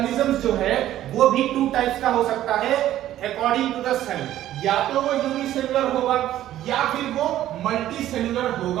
जो है वो भी टू टाइप्स का हो सकता है अकॉर्डिंग टू द सेल। या तो वो यूनिसेलुलर होगा या फिर वो मल्टीसेलुलर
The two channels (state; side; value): quieter; left; 13.0 dB